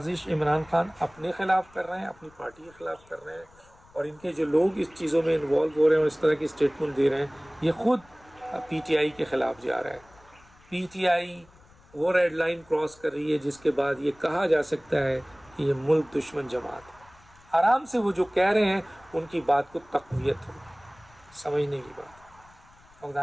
عمران خان اپنے خلاف کر رہے ہیں، اپنی پارٹی کے خلاف کر رہے ہیں، اور ان کے جو لوگ اس چیزوں میں انوالو ہو رہے ہیں اور اس طرح کی اسٹیٹمنٹ دے رہے ہیں، یہ خود PTI کے خلاف جا رہا ہے۔ PTI وہ ریڈ لائن کراس کر رہی ہے جس کے بعد یہ کہا جا سکتا ہے کہ یہ ملک دشمن جماعت ہے۔ آرام سے وہ جو کہہ رہے ہیں ان کی بات کو تقویت ہوگی، سمجھنے کی بات۔ اور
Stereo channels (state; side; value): noise; left; rumble, 27 dB below the sound